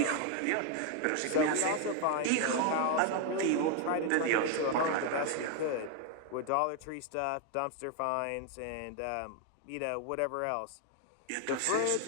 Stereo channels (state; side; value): different; both; correlation 0.01